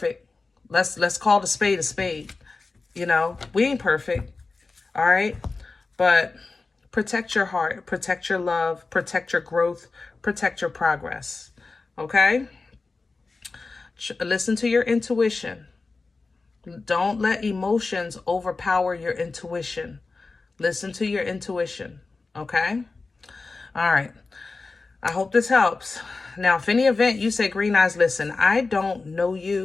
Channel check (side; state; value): right; quieter; 3.9 dB